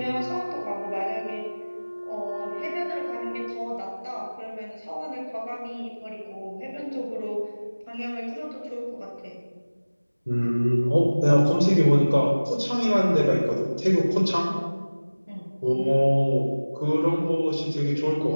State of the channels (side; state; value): both; inverted; correlation -1.00